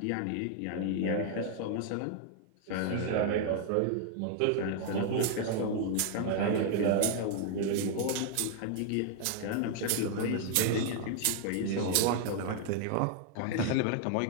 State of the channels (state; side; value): different; both; correlation 0.00